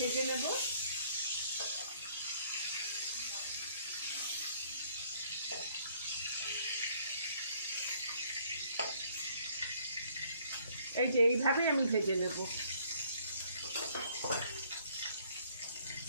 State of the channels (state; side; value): inverted; both; correlation -0.62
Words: নেব। এই যে এইভাবেই আমি ভেজে নেব।